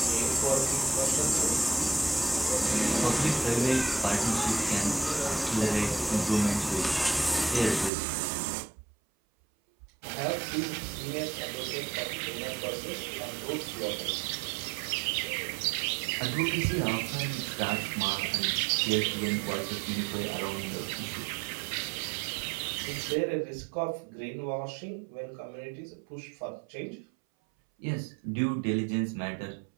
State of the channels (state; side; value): drops out; left; at 7.9 s